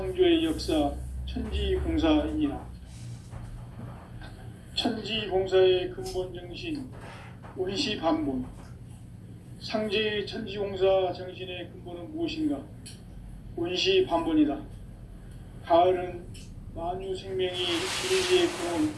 역사 천지공사이니라. 천지공사의 근본 정신 원시반본. 상제의 천지공사 정신의 근본은 무엇인가? 원시반본이다. 가을은 만유 생명이 진리의 근원,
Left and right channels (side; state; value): both; identical; correlation 1.00